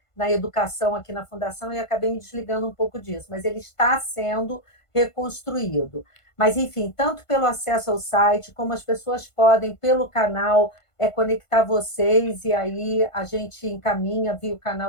educação aqui na Fundação e acabei me desligando um pouco disso, mas ele está sendo reconstruído. Mas, enfim, tanto pelo acesso ao site, como as pessoas podem, pelo canal, conectar vocês e aí a gente encaminha via o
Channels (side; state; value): right; late; 1.5 ms